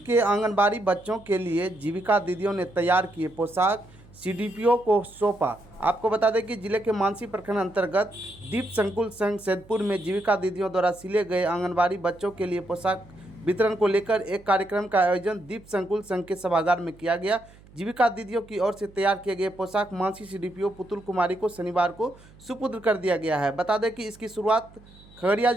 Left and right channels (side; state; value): right; noise; hum, 24 dB below the sound